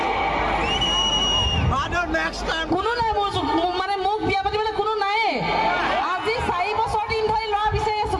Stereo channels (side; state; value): both; identical; correlation 1.00